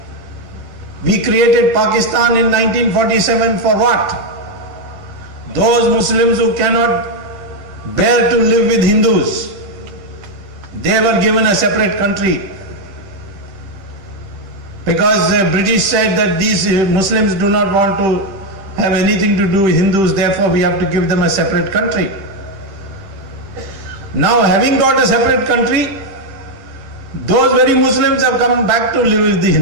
We created Pakistan in 1947 for what? Those Muslims who cannot bear to live with Hindus, they were given a separate country. Because the British said that these Muslims do not want to have anything to do with Hindus, therefore we have to give them a separate country. Now, having got a separate country, those very Muslims have come back to live with the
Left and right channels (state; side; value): late; left; 10 ms